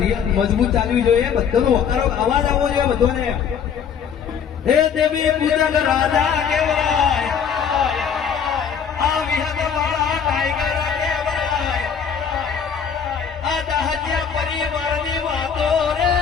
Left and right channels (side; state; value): right; quieter; 7.3 dB